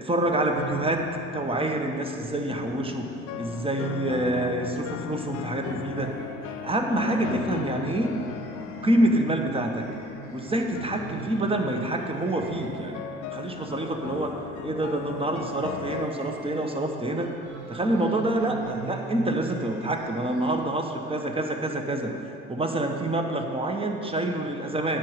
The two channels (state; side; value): normal; both; correlation 0.50